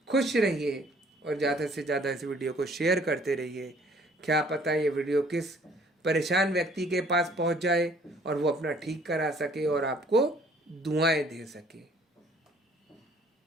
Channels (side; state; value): both; normal; correlation 0.58